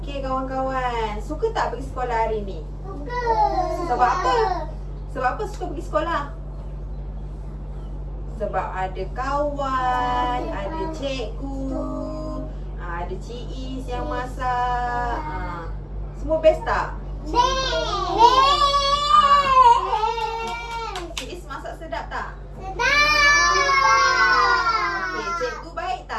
kawan-kawan, suka tak pergi sekolah hari ni? Suka. Sebab apa? Sebab apa suka pergi sekolah? Sebab ada kawan, ada cikgu, ada Cik Is yang masak. Semua best tak? Cik Is masak sedap tak? Okey, cikgu baik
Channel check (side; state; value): both; identical; correlation 1.00